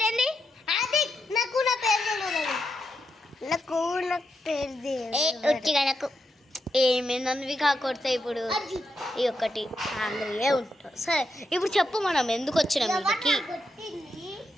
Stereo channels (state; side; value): normal; both; correlation 0.84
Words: ఆది నాకు నా పేరు తెలియదు. నాకు ఒట్టిగా నాకు ఏమేందనివి కాకొడతాయి. ఇప్పుడు ఈ ఒక్కటి ఆంధ్రయే ఉంటాం. సరే ఇప్పుడు చెప్పు మనం ఎందుకు వచ్చినాం ఇంటికి?